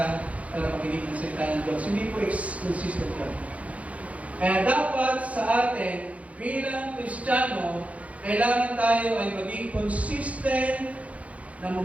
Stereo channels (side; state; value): left; late; 0.066 ms